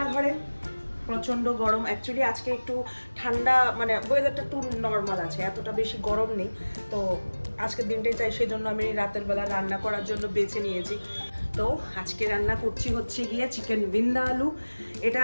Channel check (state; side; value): inverted; both; correlation -1.00